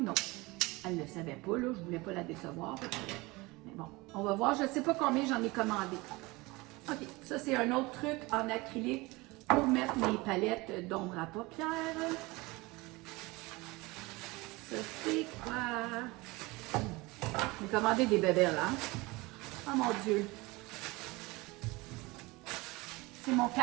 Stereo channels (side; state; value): left; quieter; 23.0 dB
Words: autre. Elle ne le savait pas, là, je ne voulais pas la décevoir. Mais bon, on va voir. Je ne sais pas combien j'en ai commandé. OK, ça c'est un autre truc en acrylique pour mettre mes palettes d'ombre à paupières. Ça c'est quoi? J'ai commandé des bébés là. Oh mon Dieu! C'est mon